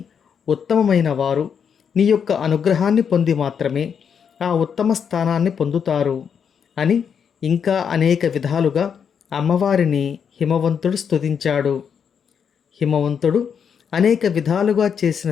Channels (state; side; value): quieter; right; 7.2 dB